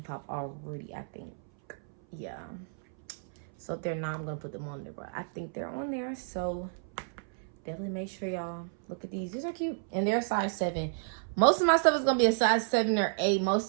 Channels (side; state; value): left; silent; 57 dB below the other